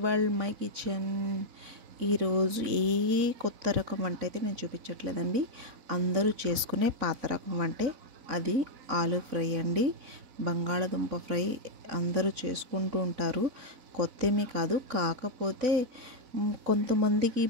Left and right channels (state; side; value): late; left; 4.0 ms